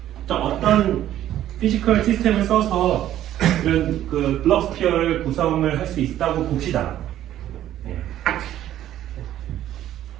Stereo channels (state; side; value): quieter; left; 12.3 dB